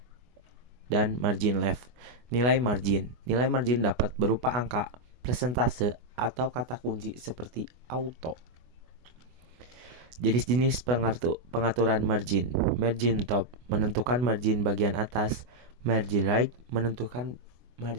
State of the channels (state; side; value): late; left; 24 ms